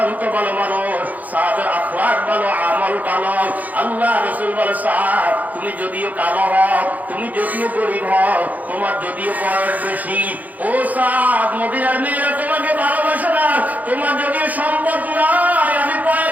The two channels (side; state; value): left; late; 0.078 ms